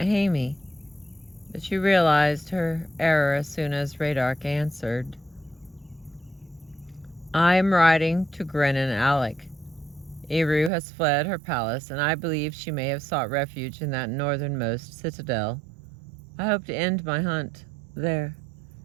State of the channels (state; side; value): drops out; left; at 10.7 s